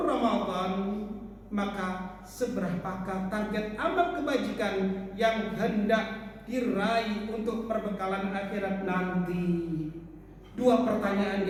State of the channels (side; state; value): both; identical; correlation 1.00